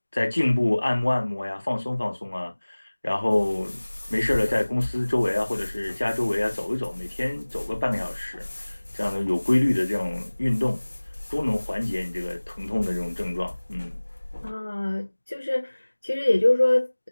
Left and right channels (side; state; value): both; inverted; correlation -1.00